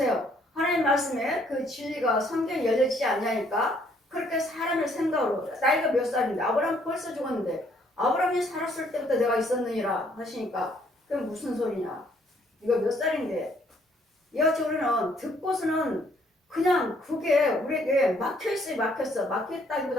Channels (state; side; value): normal; both; correlation 0.65